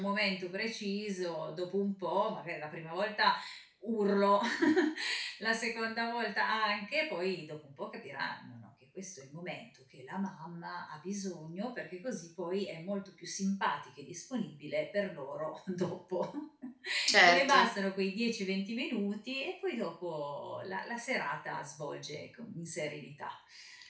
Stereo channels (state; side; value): identical; both; correlation 1.00